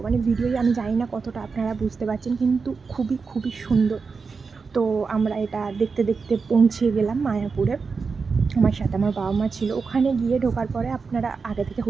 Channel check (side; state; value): left; quieter; 4.9 dB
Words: মানে ভিডিওই আমি জানি না কতটা আপনারা বুঝতে পারছেন, কিন্তু খুবই খুবই সুন্দর। তো আমরা এটা দেখতে দেখতে পৌঁছে গেলাম মায়াপুরে। আমার সাথে আমার বাবা মা ছিল। ওখানে গিয়ে ঢোকার পরে আপনারা আগে থেকে